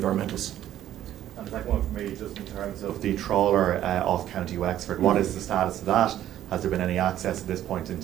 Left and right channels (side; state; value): left; quieter; 12.0 dB